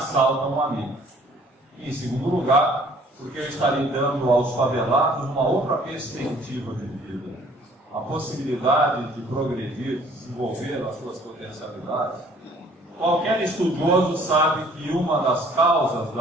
um amigo. E, em segundo lugar, porque eu estarei dando aos favelados uma outra perspectiva de vida, a possibilidade de progredir, de desenvolver as suas potencialidades. Qualquer estudioso sabe que uma das causas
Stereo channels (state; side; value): normal; both; correlation 0.56